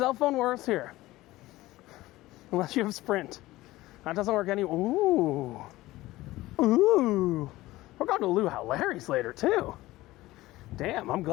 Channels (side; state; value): right; quieter; 17.7 dB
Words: phone works here. Unless you have Sprint. That doesn't work anywhere. Ooh. We're going to Luau Larry's later, too. Damn, I'm